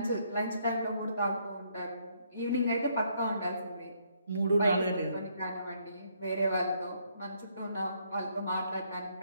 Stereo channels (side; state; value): both; inverted; correlation -0.70